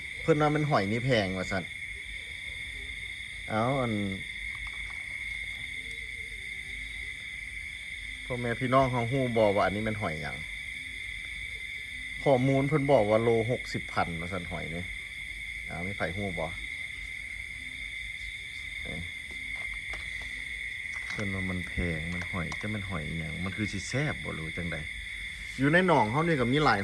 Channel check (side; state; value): both; identical; correlation 1.00